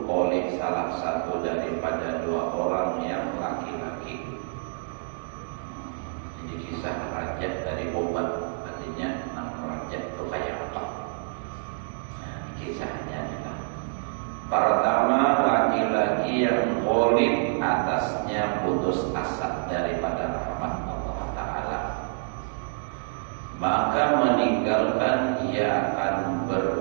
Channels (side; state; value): left; silent; 60 dB below the other